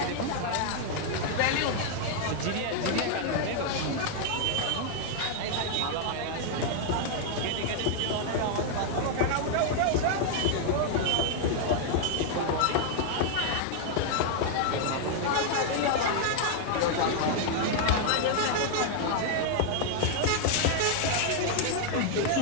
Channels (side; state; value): both; different; correlation 0.00